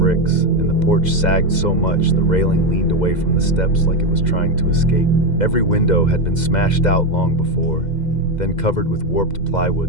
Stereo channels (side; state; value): right; late; 2.0 ms